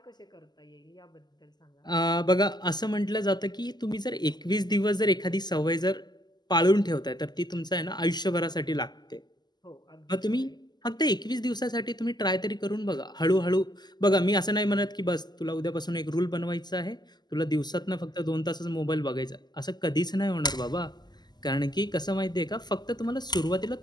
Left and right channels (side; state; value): right; late; 0.21 ms